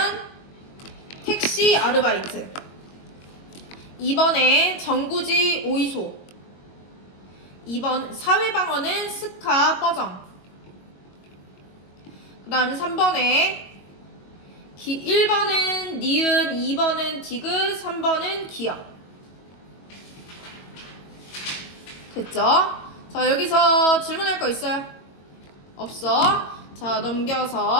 택시 아르바이트 2번에 정구지 오이소 2번 사회방어는 스카 뻐정 그 다음에 3번에 1번은 니은, 2번은 디귿, 3번은 기역. 됐죠? 자, 여기서 질문할 거 있어요? 없어. 자,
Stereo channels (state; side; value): late; right; 22 ms